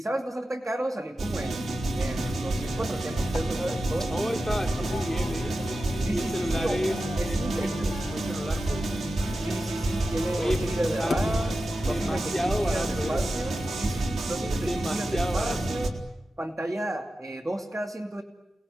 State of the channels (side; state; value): both; normal; correlation 0.92